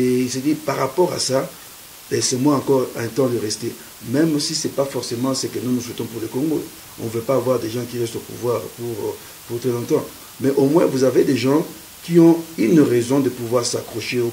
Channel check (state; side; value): identical; both; correlation 1.00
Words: il s'est dit, par rapport à ça, laissez-moi encore un temps de rester. Même si ce n'est pas forcément ce que nous souhaitons pour le Congo. On ne veut pas avoir des gens qui restent au pouvoir pour très longtemps. Mais au moins, vous avez des gens qui ont une raison de pouvoir s'accrocher au